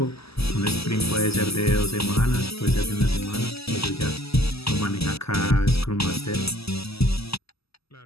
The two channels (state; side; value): late; right; 0.78 ms